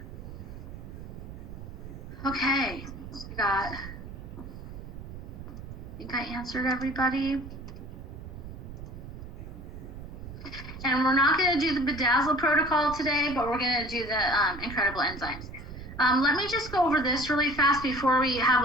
Okay, I think I answered everybody. And we're not going to do the Bedazzle protocol today, but we're going to do the incredible enzymes. Let me just go over this really fast before we have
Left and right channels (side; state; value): right; noise; rumble, 11 dB below the sound